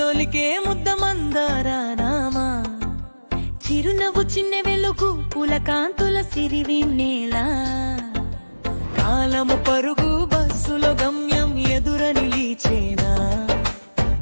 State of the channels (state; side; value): inverted; both; correlation -1.00